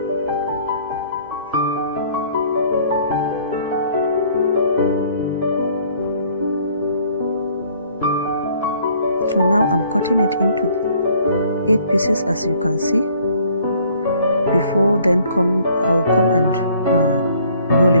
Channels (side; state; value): both; inverted; correlation -0.58